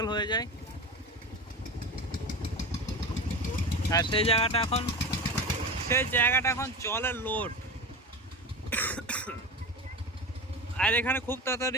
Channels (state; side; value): normal; both; correlation 0.27